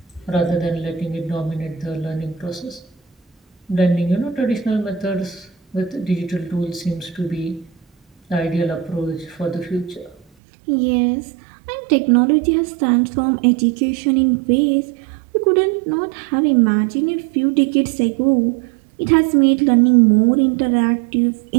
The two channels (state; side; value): drops out; left; at 10.2 s